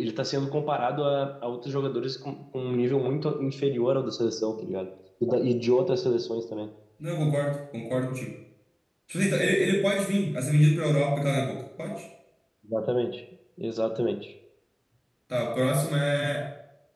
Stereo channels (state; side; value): identical; both; correlation 1.00